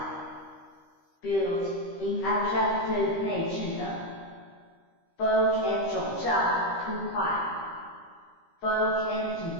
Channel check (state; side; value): late; right; 13 ms